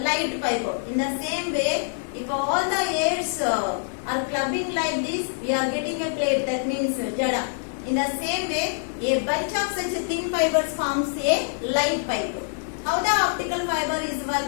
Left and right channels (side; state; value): right; silent; digital silence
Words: light fiber. In the same way, if all the airs are clubbing like this, we are getting a plate. That means jada. In the same way, a bunch of such a thin fibers forms a light pipe. How the optical fiber is